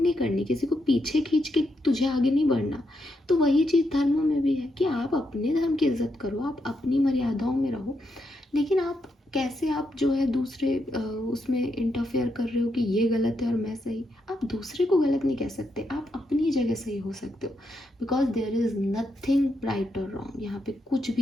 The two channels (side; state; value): both; normal; correlation 0.81